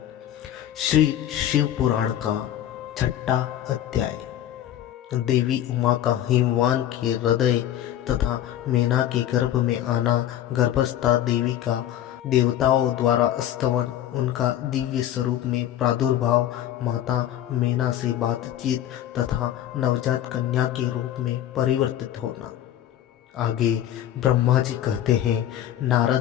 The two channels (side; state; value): right; quieter; 11.6 dB